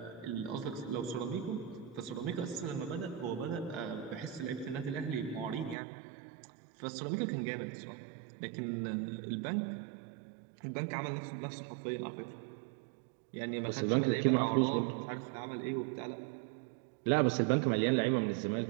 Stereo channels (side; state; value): left; drops out; at 5.8 s